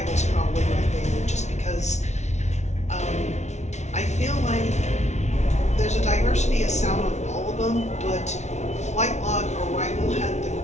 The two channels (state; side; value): late; right; 0.33 ms